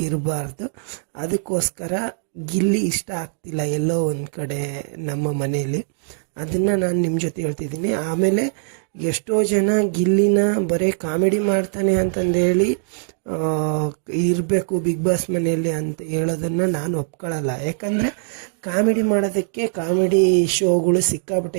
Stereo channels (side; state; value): left; silent; digital silence